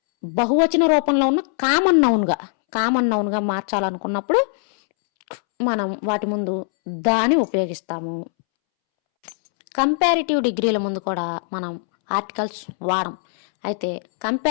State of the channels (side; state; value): right; silent; 65 dB below the other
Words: బహువచన రూపంలో ఉన్న కామన్ నౌన్గా మార్చాలనుకున్నప్పుడు మనం వాటి ముందు దాని ఉపయోగిస్తాము. కంపారిటివ్ డిగ్రీల ముందు కూడా మనం ఆర్టికల్స్ వాడం. అయితే